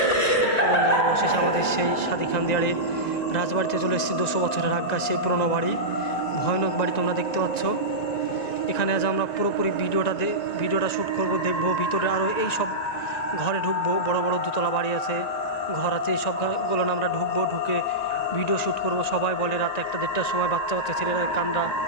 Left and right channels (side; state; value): right; late; 1.9 ms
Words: অবশেষে আমাদের সেই সাদি খান দিয়ারে রাজবাড়িতে চলে এসেছি। 200 বছরের আজ্ঞা সেই পুরনো বাড়ি, ভয়ানক বাড়ি তোমরা দেখতে পাচ্ছ। এখানে আজ আমরা পুরোপুরি ভিডিওটা শ্যুট করব, দেখবো ভিতরে আরও এই সব ঘরে ঢুকবো। বড় বড় দোতলা বাড়ি আছে, ঘর আছে, এই সবগুলো আমরা ঢুকবো, ঢুকে ভিডিও শ্যুট করব। সবাই বলে রাত 1-1:30টার সময় বাচ্চা বাচ্চা ছেলেরা কান্না